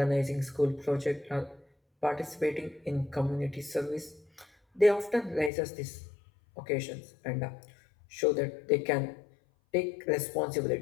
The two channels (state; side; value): drops out; right; at 5.5 s